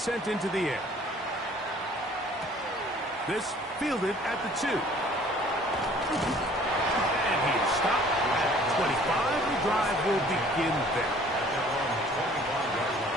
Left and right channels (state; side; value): normal; both; correlation 0.53